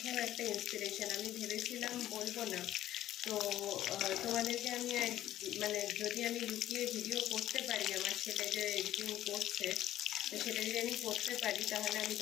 একটা ইন্সপিরেশন। আমি ভেবেছিলাম বলবো না, তো তোমাদেরকে আমি মানে যদি আমি লুকিয়ে ভিডিও করতে পারি, আমার ছেলে যে এডিটিং করছে, তো সেটা যদি আমি করতে পারি তাহলে আমি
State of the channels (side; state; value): right; quieter; 13.0 dB